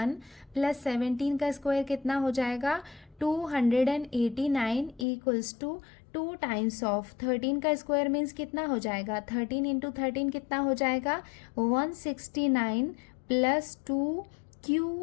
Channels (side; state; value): right; drops out; at 5.1 s